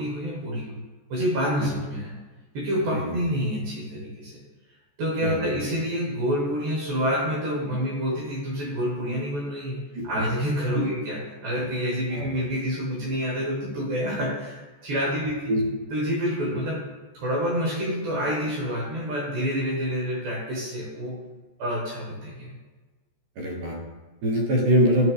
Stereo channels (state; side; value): late; left; 14 ms